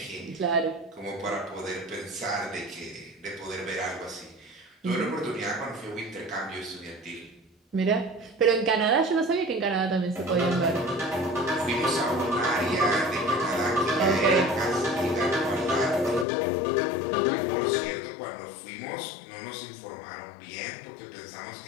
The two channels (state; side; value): drops out; right; at 16.2 s